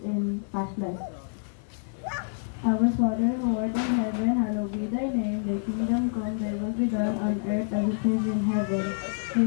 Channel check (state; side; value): silent; right; digital silence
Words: in past life. Our Father who art in heaven, hallowed be thy name. Thy kingdom come, thy will be done on earth as it is in heaven.